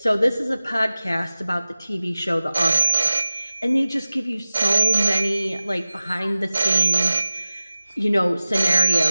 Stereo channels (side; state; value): both; inverted; correlation -0.96